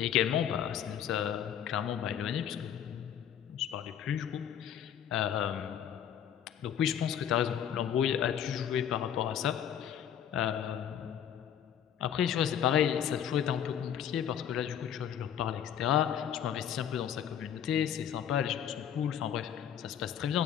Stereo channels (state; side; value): quieter; right; 9.3 dB